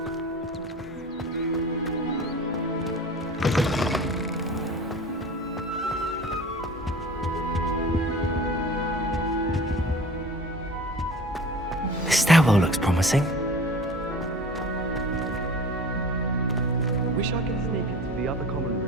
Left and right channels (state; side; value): normal; both; correlation 0.40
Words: This stairwell looks promising. Wish I could sneak into the other common